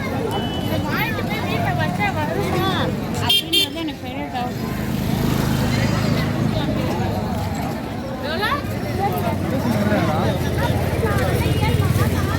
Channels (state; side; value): identical; both; correlation 1.00